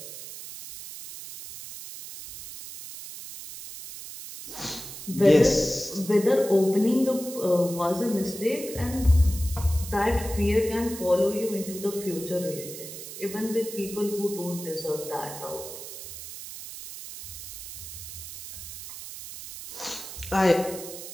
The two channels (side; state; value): right; noise; hiss, 11 dB below the sound